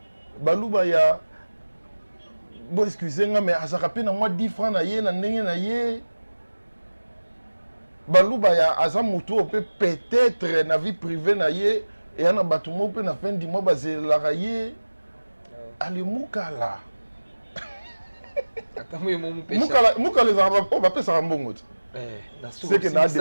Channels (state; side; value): inverted; both; correlation -1.00